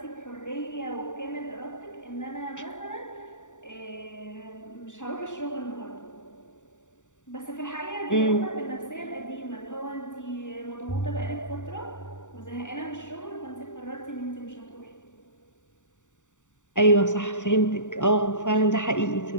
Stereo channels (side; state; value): right; late; 0.86 ms